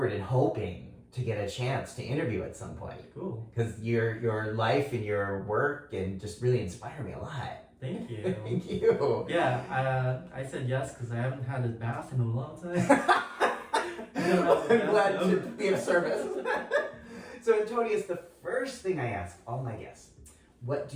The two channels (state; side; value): identical; both; correlation 1.00